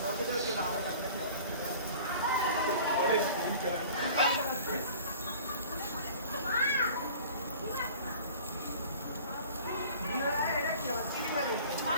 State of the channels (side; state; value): both; inverted; correlation -0.45